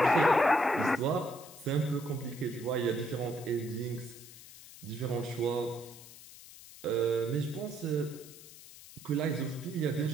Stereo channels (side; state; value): left; noise; hiss, 18 dB below the sound